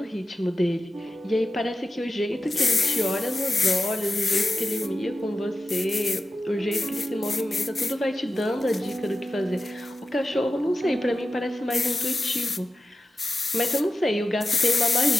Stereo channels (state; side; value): normal; both; correlation 0.93